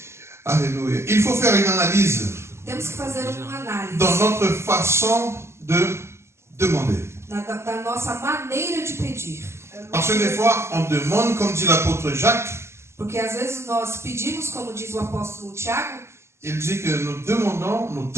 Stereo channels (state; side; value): late; left; 0.13 ms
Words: Alléluia. Il faut faire une analyse Temos que fazer uma análise dans notre façon de demander. da nossa maneira de pedir. Parce que des fois, on demande, comme dit l'apôtre Jacques, Porque às vezes nós pedimos, como diz o apóstolo Tiago, il dit que nous demandons